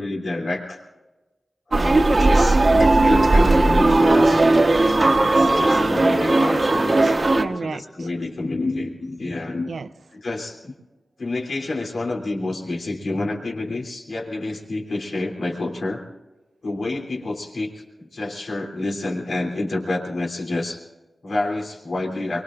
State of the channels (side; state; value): both; normal; correlation 0.96